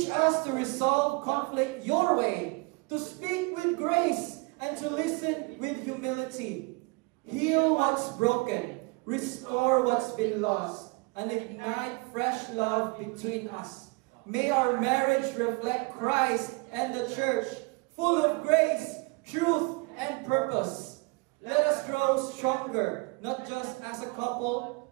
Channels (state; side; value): quieter; left; 28.1 dB